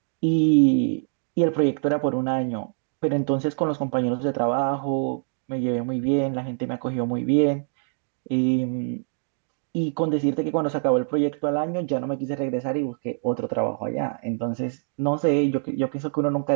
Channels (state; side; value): silent; left; digital silence